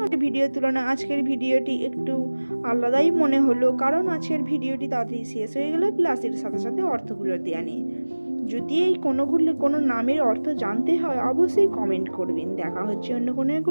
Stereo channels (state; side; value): inverted; both; correlation -1.00